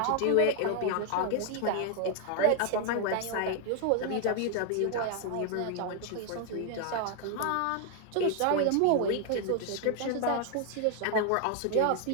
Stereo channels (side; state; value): both; different; correlation 0.00